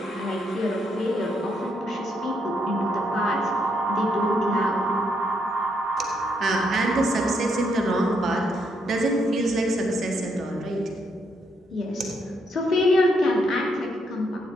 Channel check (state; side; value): normal; both; correlation 0.76